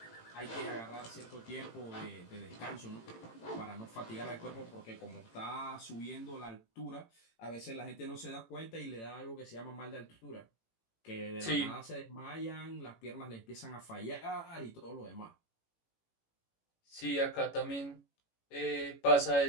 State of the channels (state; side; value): late; right; 18 ms